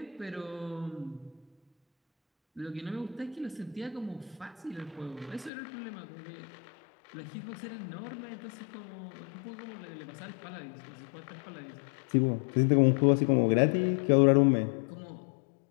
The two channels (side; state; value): right; drops out; at 5.5 s